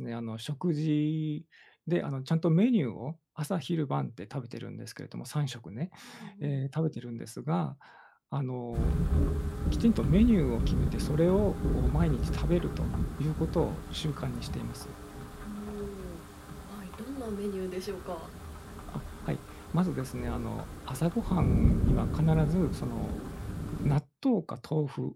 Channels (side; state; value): both; identical; correlation 1.00